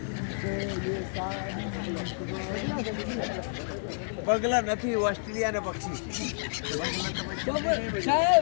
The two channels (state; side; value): silent; right; digital silence